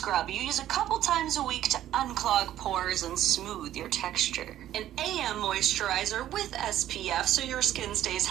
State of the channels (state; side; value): quieter; left; 12.5 dB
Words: you use a couple times a week to unclog pores and smooth your texture. An AM moisturizer with SPF so your skin stays